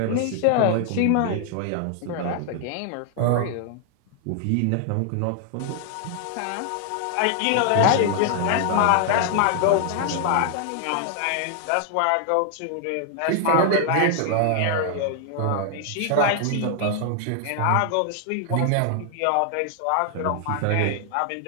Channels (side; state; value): both; different; correlation 0.00